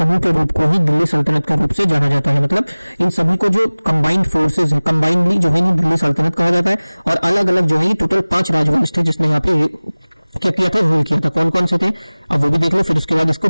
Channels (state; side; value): inverted; both; correlation -1.00